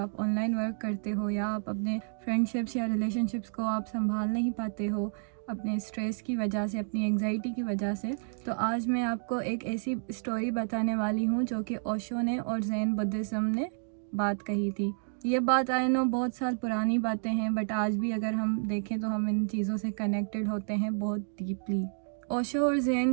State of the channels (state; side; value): silent; left; digital silence